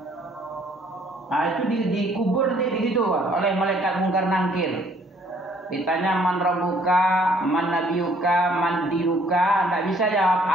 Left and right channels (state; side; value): normal; both; correlation 0.62